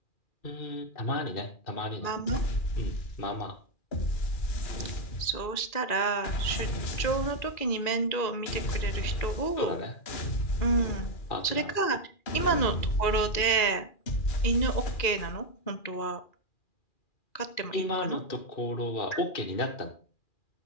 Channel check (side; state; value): right; late; 2.4 ms